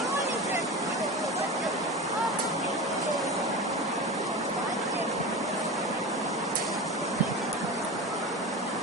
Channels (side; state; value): both; normal; correlation 0.28